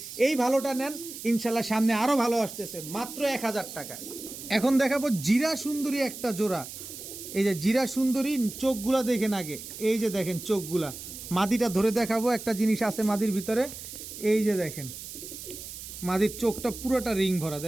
এই ভালোটা নেন, ইনশাল্লাহ সামনে আরও ভালো আসতেছে, মাত্র 1000 টাকা। এখন দেখাবো জিরা সুন্দরী একটা জোড়া। এই যে জিরা সুন্দরী, চোখগুলা দেখেন আগে, এই যে দেখেন চোখগুলা। মাদিটা ধরে দেখাবো, একটা জিনিস আছে মাদির ভিতরে, এই যে দেখেন মাদির চোখটা পুরোটা রিং ভরা,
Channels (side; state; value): right; noise; hiss, 11 dB below the sound